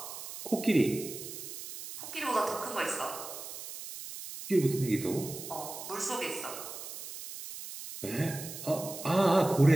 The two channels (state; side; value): noise; right; hiss, 10 dB below the sound